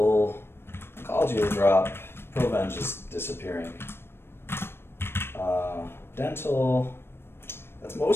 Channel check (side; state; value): right; late; 0.12 ms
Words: oncology will drop. Proven's just disappearing. Dental, that's